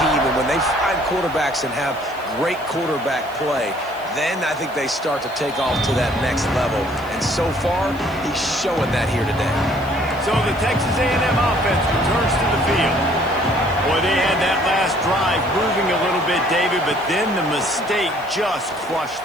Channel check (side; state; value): right; noise; hiss, 24 dB below the sound